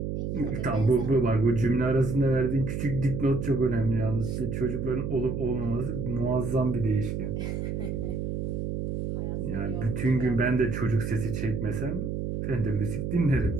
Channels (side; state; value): right; noise; hum, 3 dB below the sound